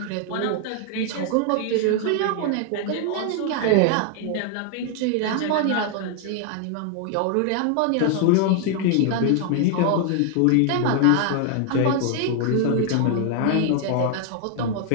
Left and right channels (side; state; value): both; different; correlation 0.00